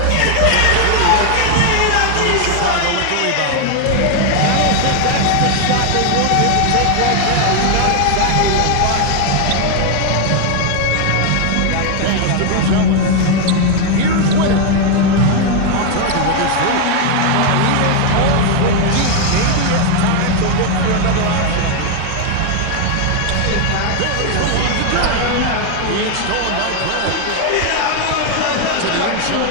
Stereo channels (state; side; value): different; both; correlation 0.01